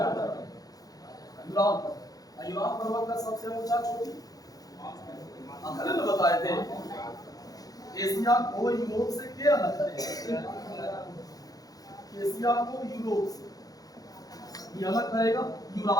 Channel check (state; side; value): late; right; 0.18 ms